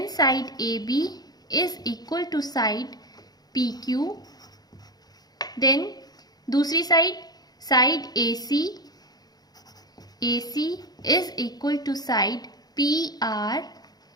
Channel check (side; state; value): right; late; 0.19 ms